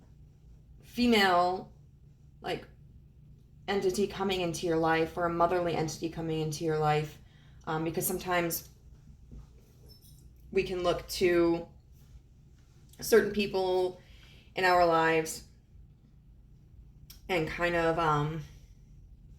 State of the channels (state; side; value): identical; both; correlation 1.00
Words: female, like, entity coming into your life, or a motherly entity coming into your life. Because sometimes we can look to certain people in our lives and kind of